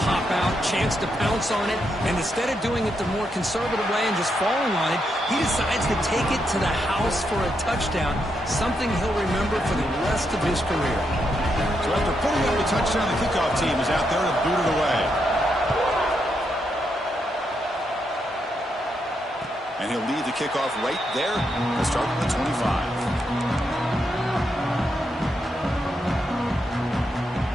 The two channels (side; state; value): both; normal; correlation 0.81